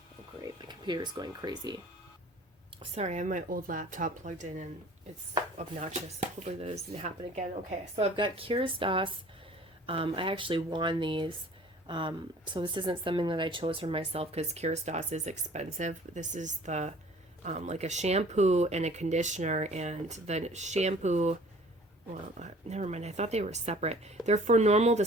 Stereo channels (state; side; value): normal; both; correlation 0.50